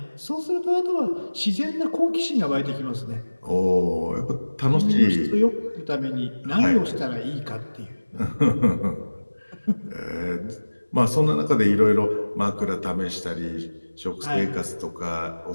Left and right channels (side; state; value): both; inverted; correlation -1.00